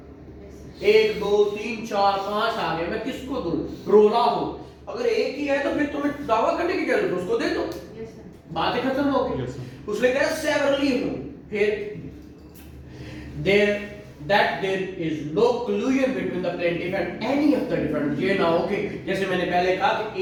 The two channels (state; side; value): identical; both; correlation 1.00